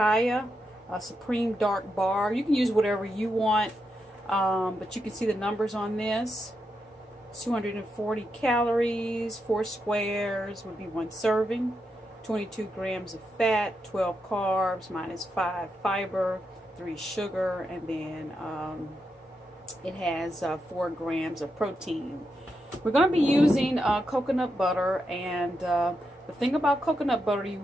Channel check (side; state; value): both; normal; correlation 0.85